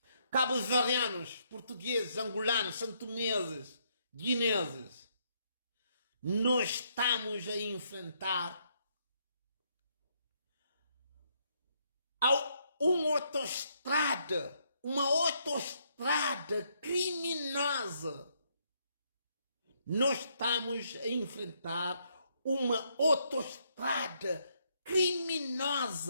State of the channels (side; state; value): both; inverted; correlation -0.73